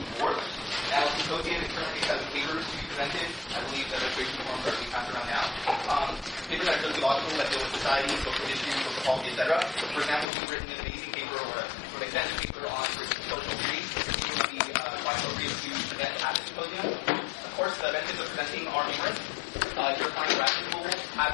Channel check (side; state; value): right; drops out; at 10.2 s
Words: 4th. Now, the symposium is currently has papers to be presented. I believe the registration forms are being passed around now. Papers that are sociological, that deal with society, social issues, social policy, etc. For example, if you've written an amazing paper or a sort of extensive paper on social theory, it would be quite appropriate to present at the symposium. Of course, the benefits of presenting are numerous. Your kind of graduate school